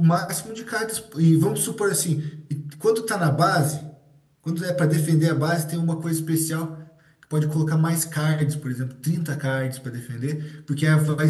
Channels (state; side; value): identical; both; correlation 1.00